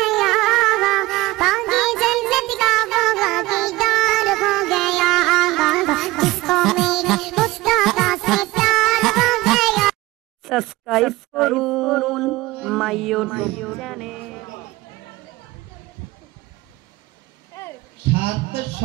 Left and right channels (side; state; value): left; quieter; 19.6 dB